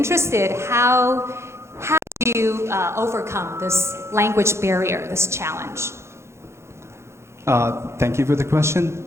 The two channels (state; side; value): late; left; 0.13 ms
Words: how do you overcome this language barrier, this challenge? Thank you for the question.